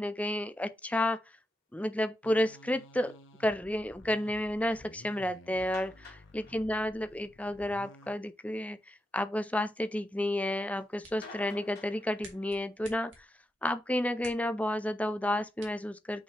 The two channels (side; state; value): both; normal; correlation 0.86